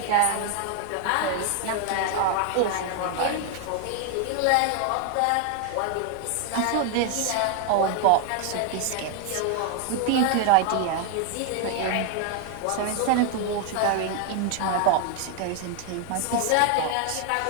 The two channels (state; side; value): different; both; correlation 0.01